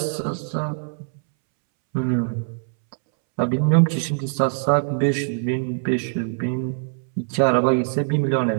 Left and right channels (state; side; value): silent; left; 64 dB below the other